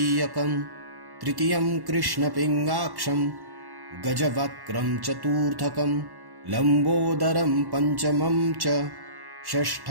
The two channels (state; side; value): late; left; 1.1 ms